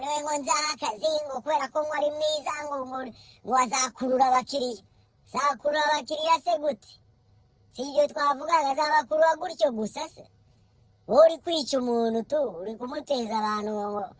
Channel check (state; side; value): identical; both; correlation 1.00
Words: ngo nzaha akazi ngo kubera ko ngo ari mwiza ngo azakurura abakiriya zakurura abakiriya se gute si ibyo twavugaga azabakurura gutyo gusa se wowe uri kwica umuntu uri kumuteza abantu